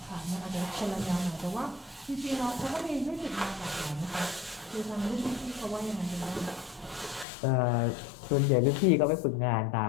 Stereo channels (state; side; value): drops out; right; at 7.2 s